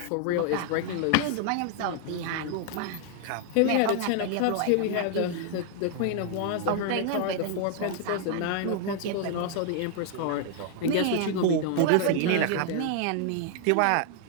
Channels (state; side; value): different; both; correlation 0.00